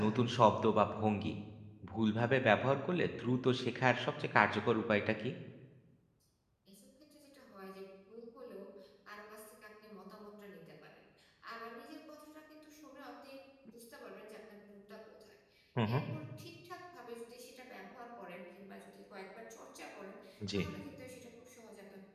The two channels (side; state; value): both; identical; correlation 1.00